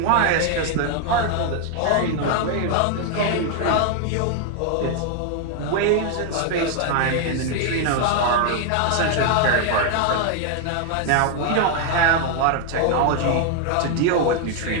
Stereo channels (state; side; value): different; both; correlation 0.00